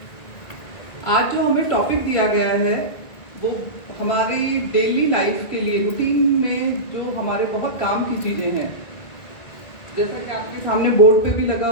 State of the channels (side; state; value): right; late; 1.9 ms